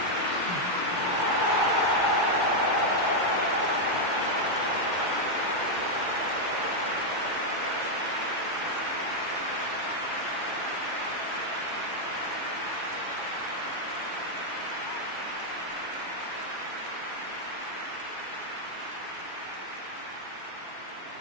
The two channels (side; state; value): right; late; 2.1 ms